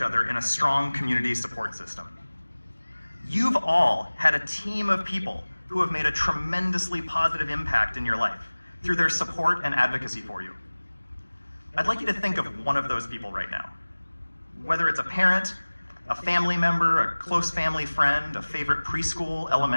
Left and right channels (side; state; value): both; inverted; correlation -1.00